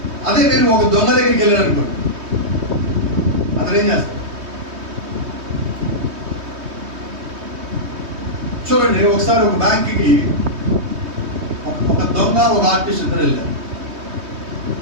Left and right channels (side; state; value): left; late; 3.2 ms